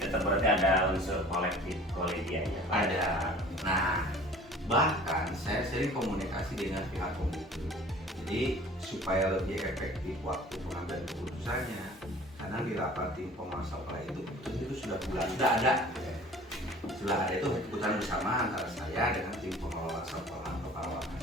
berarti ada unsur kolektif kolegialnya. Ada. Nah, bahkan saya sering komunikasi dengan pihak komite. Jadi supaya lebih efektif waktu pengambilan keputusannya, karena di rapat tim pengawas sekolah itu sudah ada itu keputusan bersama antara saya dengan tim pengelola sekolah atau pengelola.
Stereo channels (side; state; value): both; normal; correlation 0.46